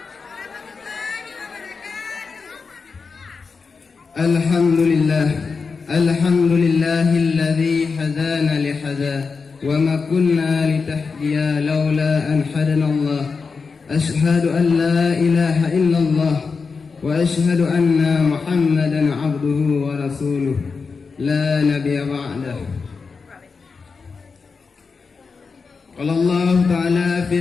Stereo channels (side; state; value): right; quieter; 4.9 dB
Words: Alhamdulillahilladzi hadana lihada wa ma kunna litahdiya laula an hadanallah. Ashhadu an la ilaha illallah wa ashhadu anna Muhammadan abduhu wa rasuluh la nabiyya ba'dah. Qala Allah Ta'ala